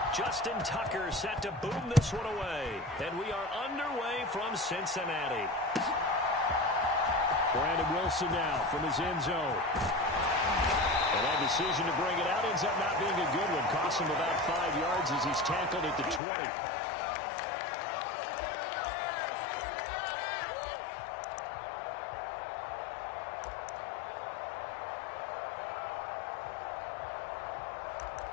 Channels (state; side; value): drops out; right; at 16.2 s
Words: Justin Tucker set to boom this one away. And we are underway from Cincinnati. Brandon Wilson now from his end zone. And that decision to bring it out ends up not being a good one. Costs him about 5 yards as he's tackled at the 20.